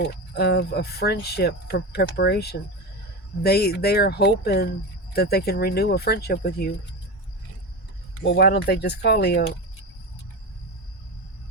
of a friendship preparation. They are hoping that they can renew a friendship with you. Well, why don't they just call Leo?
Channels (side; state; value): both; normal; correlation 0.22